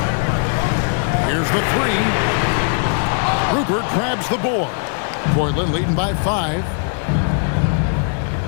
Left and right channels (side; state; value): right; silent; 56 dB below the other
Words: Here's the 3. Rupert grabs the board. Portland leading by 5.